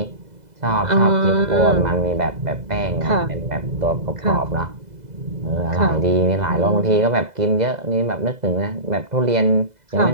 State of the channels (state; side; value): late; left; 2.0 ms